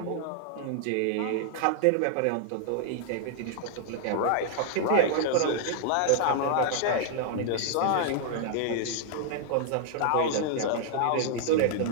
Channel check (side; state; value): both; different; correlation 0.00